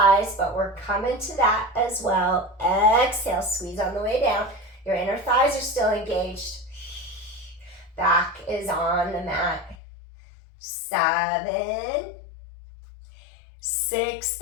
but we're coming to that as well. Exhale, squeeze on the way down. Your inner thighs are still engaged. Back is on the mat. 7, 6,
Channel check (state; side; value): drops out; right; at 9.8 s